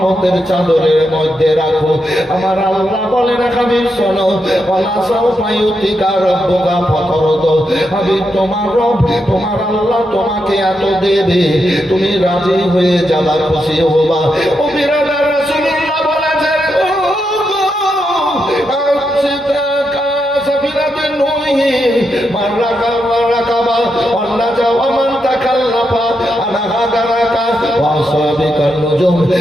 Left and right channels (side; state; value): both; normal; correlation 0.83